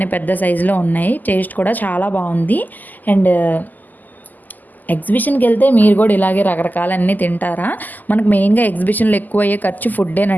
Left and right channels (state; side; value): late; right; 0.084 ms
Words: పెద్ద సైజులో ఉన్నాయి, టేస్ట్ కూడా చాలా బాగుంది. అండ్ ఎగ్జిబిషన్కి వెళ్తే మీరు కూడా ఇలాగే రకరకాలన్నీ తింటారా? మనకు మెయిన్గా ఎగ్జిబిషన్లో ఎక్కువ అయ్యే ఖర్చు